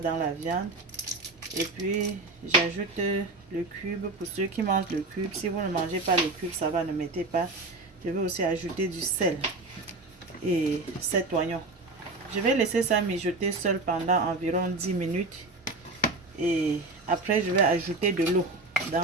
la viande, et puis j'ajoute le cube pour ceux qui mangent le cube. Si vous ne mangez pas le cube, ça va, ne mettez pas. Je vais aussi ajouter du sel et 7 oignons. Je vais laisser ça mijoter seul pendant environ 10 minutes, et après je vais ajouter de l'eau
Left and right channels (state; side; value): quieter; left; 3.2 dB